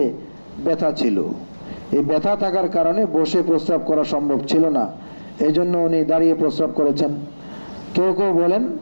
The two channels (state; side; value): inverted; both; correlation -1.00